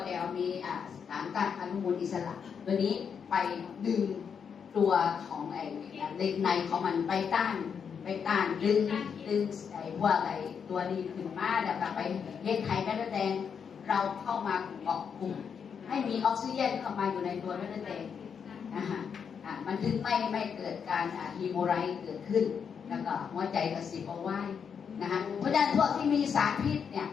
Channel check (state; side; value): quieter; right; 6.9 dB